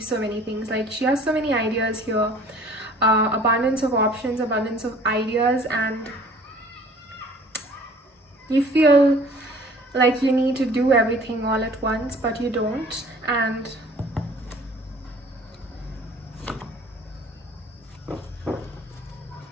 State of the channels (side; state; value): both; normal; correlation 0.51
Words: so many things. Like, she has so many ideas here, abundance of options, abundance of ideas, and you feel like you need to do everything all at once, but you don't. And